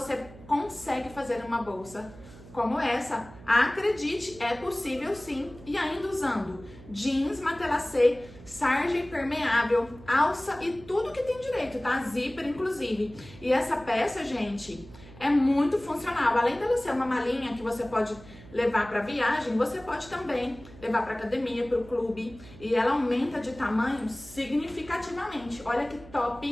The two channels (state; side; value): noise; right; hum, 19 dB below the sound